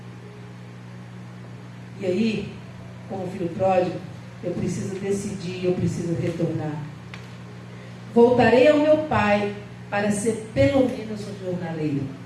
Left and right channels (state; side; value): identical; both; correlation 1.00